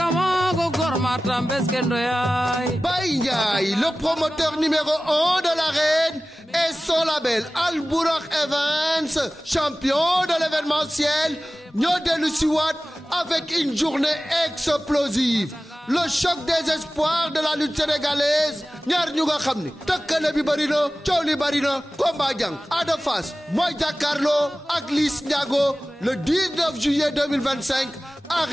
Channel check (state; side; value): normal; both; correlation 0.96